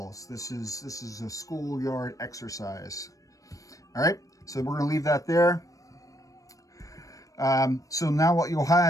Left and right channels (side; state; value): right; late; 0.16 ms